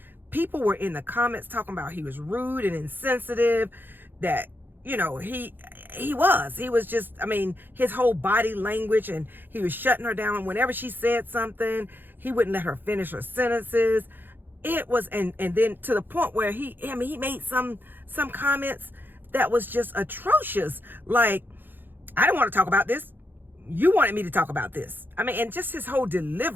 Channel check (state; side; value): late; left; 0.094 ms